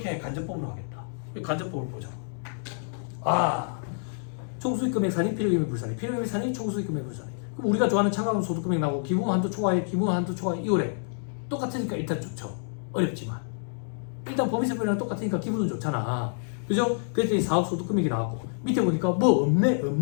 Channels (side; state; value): right; silent; digital silence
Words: 간접법으로 하겠다. 간접법을 보자. 총수익금액 산이 필요경비 불산이, 필요경비 산이 총수익금액 불산이. 그럼 우리가 좋아하는 차감은 소득금액 나오고 기부금 한도 초과에 기부금 한도 초과에 2월에 똑같으니까 일단 좋죠. 어렵지만 일단 법인세법이랑 똑같으니까 기분은 좋잖아. 그죠? 그랬더니 사업소득금액이 나왔고 밑에 보니까 뭐